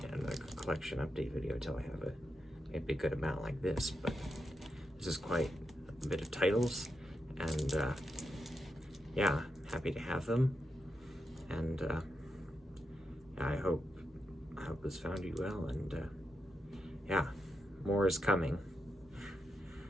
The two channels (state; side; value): normal; both; correlation 0.85